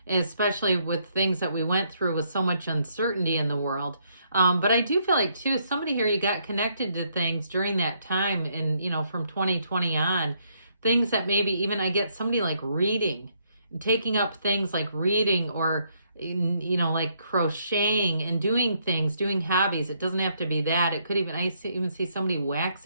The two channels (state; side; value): inverted; both; correlation -0.72